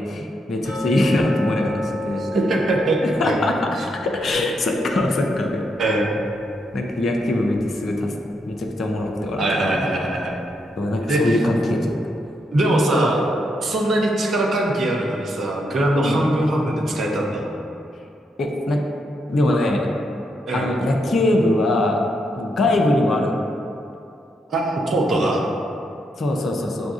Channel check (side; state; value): both; normal; correlation 0.79